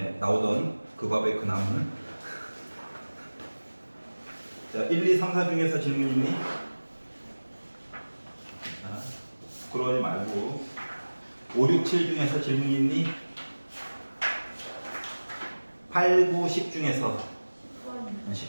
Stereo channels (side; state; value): both; inverted; correlation -1.00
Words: 나오던 그 밥의 그 나무는. 자, 1, 2, 3, 4 중에서 질문 있니? 자, 부끄러워하지 말고. 5, 6, 7 중에서 질문 있니? 8, 9, 10 중에서